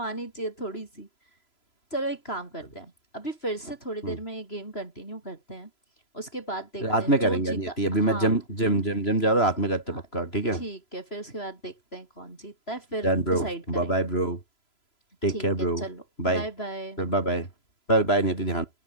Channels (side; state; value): right; late; 3.0 ms